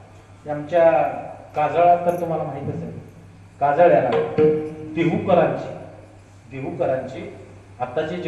आमच्या काजळात तर तुम्हाला माहितच आहे, काजळ्याला देहूकरांची आताचे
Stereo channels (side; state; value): both; identical; correlation 1.00